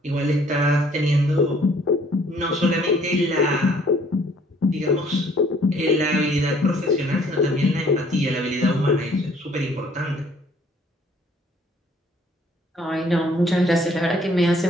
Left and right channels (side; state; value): both; normal; correlation 0.59